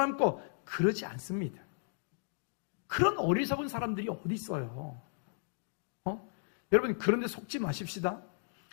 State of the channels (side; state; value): right; silent; digital silence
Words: 그러지 않습니다. 그런 어리석은 사람들이 어디 있어요? 여러분, 그런데 속지 마십시다.